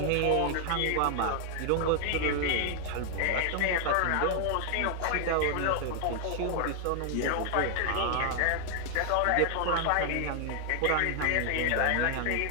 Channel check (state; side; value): different; both; correlation 0.00